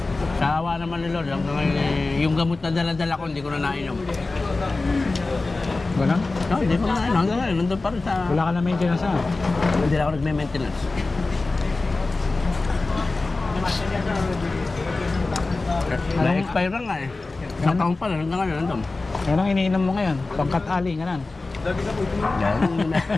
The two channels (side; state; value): right; quieter; 3.4 dB